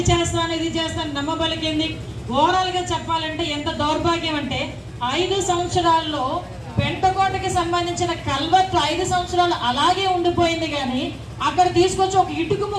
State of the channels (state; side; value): identical; both; correlation 1.00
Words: చేస్తాను ఇది చేస్తాను నమ్మబలికింది. ఓవరాల్గా చెప్పాలంటే ఎంత దౌర్భాగ్యం అంటే 5 సంవత్సరాల్లో పెంటకోటకి సంబంధించిన కల్వర్ట్ 5 సంవత్సరాలు అలాగే ఉండిపోయింది. కానీ అక్కడ తీసుకొచ్చి ఒక ఇటుకు